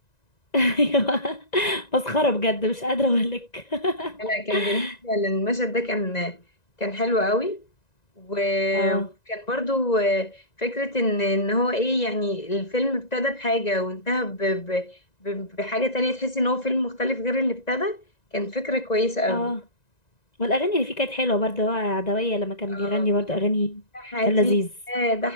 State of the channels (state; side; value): late; right; 1.9 ms